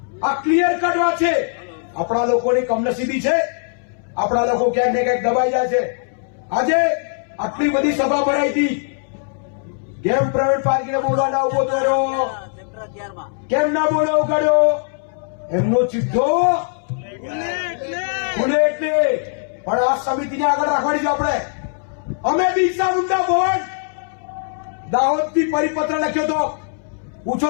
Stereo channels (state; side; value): silent; right; 66 dB below the other